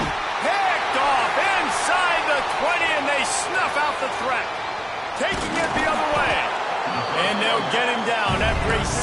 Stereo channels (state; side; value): identical; both; correlation 1.00